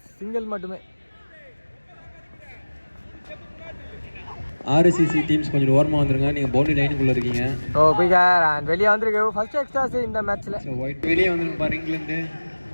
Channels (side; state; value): both; inverted; correlation -1.00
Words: சிங்கிள் மட்டுமே. ஆர்சிசி டீம்ஸ் கொஞ்சம் ஓரமாக வந்துருங்க. நீங்கள் பவுண்டரி லைனுக்குள்ளே இருக்கீங்க. ஸோ குயிக்கர் அண்ட் வெளியே வந்திருக்கு. ஃபர்ஸ்ட் எக்ஸ்ட்ராஸ் இந்த மேட்ச்சில். ஸோ ஒயிட் வெளியே வந்துருக்கு பாரு இங்கிலேருந்து.